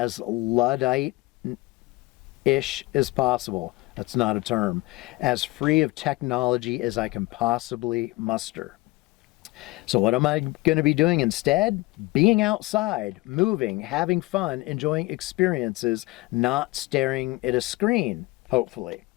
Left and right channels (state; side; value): quieter; right; 21.6 dB